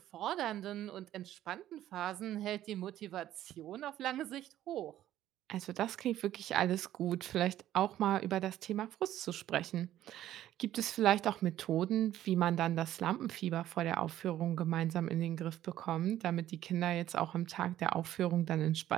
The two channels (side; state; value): left; quieter; 12.7 dB